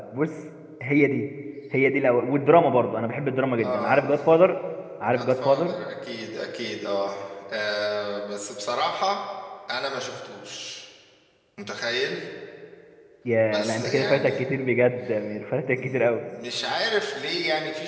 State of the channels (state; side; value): identical; both; correlation 1.00